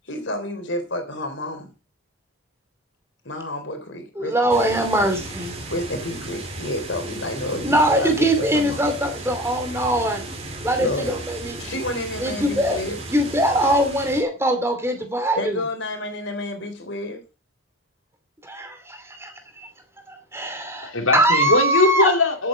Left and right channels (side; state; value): both; normal; correlation 0.27